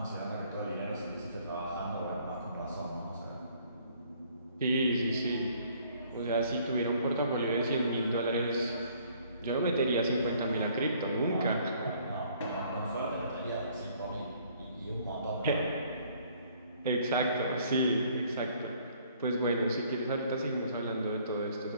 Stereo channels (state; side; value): inverted; both; correlation -0.60